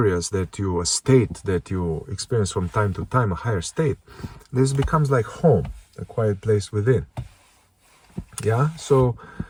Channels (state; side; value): identical; both; correlation 1.00